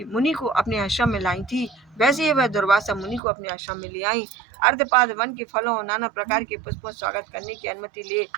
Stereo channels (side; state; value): left; drops out; at 3.2 s